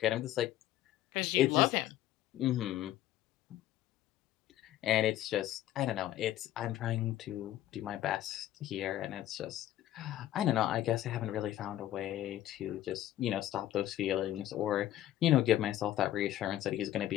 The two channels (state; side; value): quieter; right; 13.2 dB